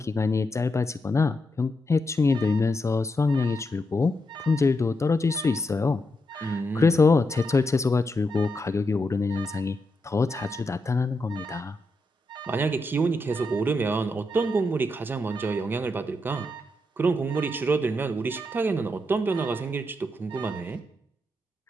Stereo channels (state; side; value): normal; both; correlation 0.83